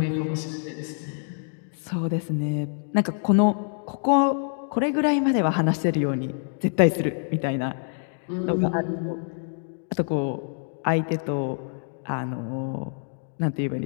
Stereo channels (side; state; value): right; silent; 61 dB below the other